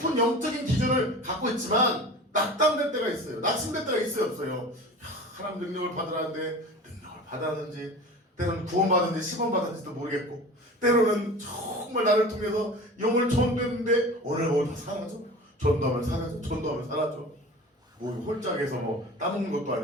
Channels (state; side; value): normal; both; correlation 0.37